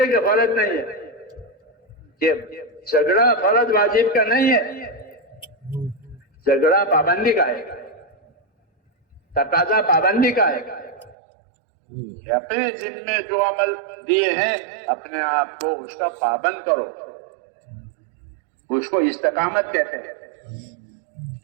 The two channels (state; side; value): drops out; left; at 11.2 s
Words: کہ فرض نہیں ہے، کہ جھگڑا فرض واجب کا نہیں ہے، جھگڑا پابندی کا ہے، تقاضا پابندی کا ہے کہ اپنے ذمے جو عمل دیے ہیں اپنے آپ کو اس کا پابند کرو، اس کو استقامت کہتے ہیں۔